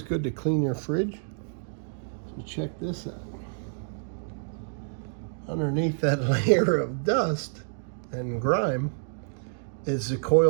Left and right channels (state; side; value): silent; left; digital silence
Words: good to clean your fridge. So check this out. Underneath that layer of dust and grime is the